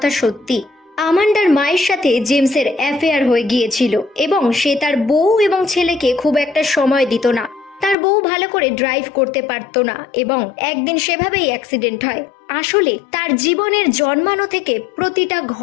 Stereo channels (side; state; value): right; drops out; at 8.0 s